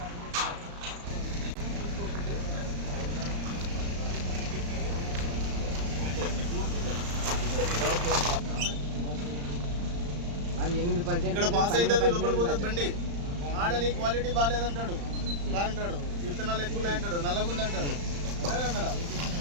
అది 8% ఇక్కడ పాస్ అవుతుంది, లోపల పోతుంది బండి. ఆడ నీ క్వాలిటీ బాగాలేదంటాడు, అంటాడు విత్తనాలు ఎక్కువ అంటాడు, నల్లగుందంటాడు. అదే అన్నాడా?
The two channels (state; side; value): late; left; 35 ms